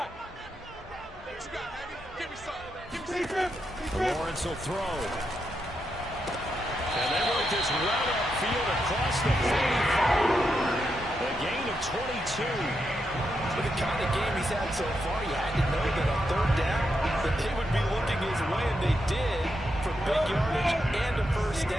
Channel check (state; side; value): normal; both; correlation 0.83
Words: Lawrence will throw. And they work this right upfield across the 45. A gain of 22. With the kind of game he's had so far, you had to know that on 3rd down, that they would be looking his way, and they did, for big yardage and a 1st